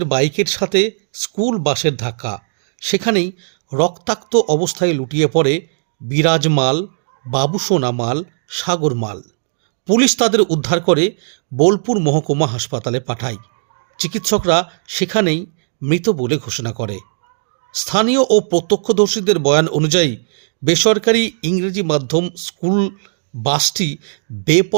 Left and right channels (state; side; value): silent; left; digital silence